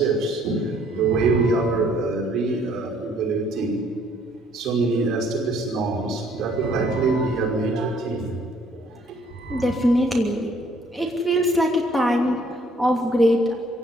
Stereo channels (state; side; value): normal; both; correlation 0.63